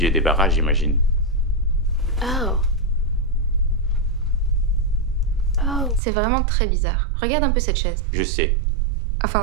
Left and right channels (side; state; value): left; drops out; at 6.0 s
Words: débarras, j'imagine. Oh. Oh. C'est vraiment très bizarre. Regarde un peu cette chaise. Je sais.